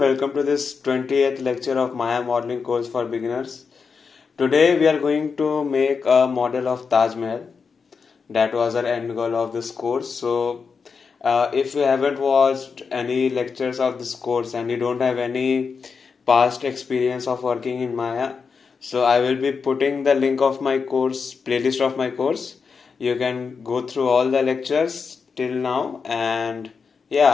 to this 20th lecture of Maya modeling course for beginners. Today we are going to make a model of Taj Mahal. That was our end goal of this course. So if you haven't watched any lectures of this course and you don't have any past experience of working in Maya, so I will be putting the link of my course, playlist of my course. You can go through all the lectures till now, and yeah,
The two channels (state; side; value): quieter; right; 5.4 dB